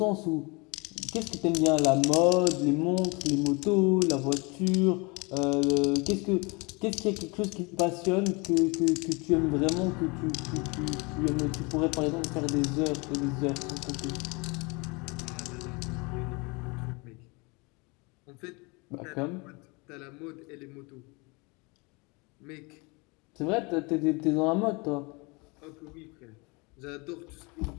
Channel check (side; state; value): right; quieter; 28.3 dB